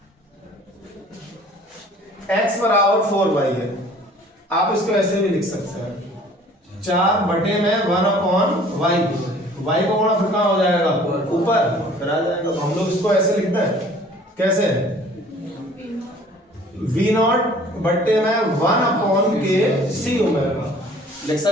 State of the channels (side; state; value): both; normal; correlation 0.52